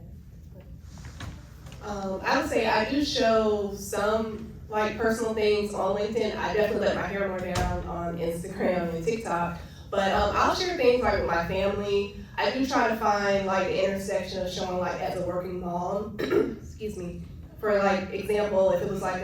I would say I do show some like personal things on LinkedIn. I definitely let my hair more down on Instagram and TikTok, but I'll share things like with my family. I do try to find like the intersection of showing like as a working mom, excuse me, for like example, if it was like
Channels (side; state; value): both; identical; correlation 1.00